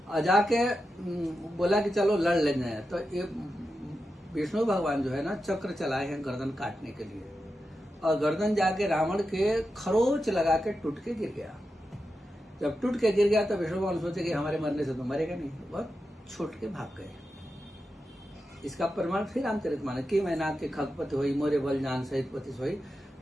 और जाके बोला कि चलो लड़ लेंगे। तो ये विष्णु भगवान जो है ना चक्र चलाए हैं गर्दन काटने के लिए, और गर्दन जाके रावण के खरोच लगा के टूट के गिर गया। जब टूट के गिर गया तो विष्णु भगवान सोचे कि हमारे मरने से तो मरेगा नहीं, बहुत छूट के भाग गए। इसका प्रमाण फिर रामचरितमानस की मैना के खगपति हुई मोरे बल जान सहित पति सोई।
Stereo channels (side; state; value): both; normal; correlation 0.89